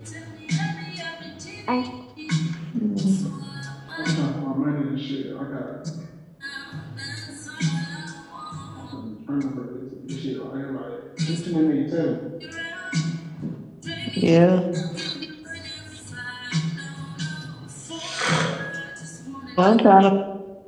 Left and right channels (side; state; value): both; identical; correlation 1.00